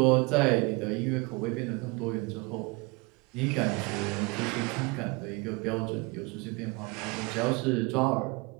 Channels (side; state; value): left; quieter; 27.9 dB